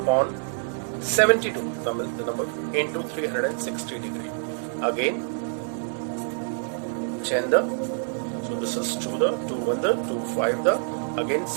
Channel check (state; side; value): silent; left; digital silence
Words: 72, Tamil the number, into 360 degree. Again, Chenda, so this is 2 the, 2 1 the, 2 5 the, again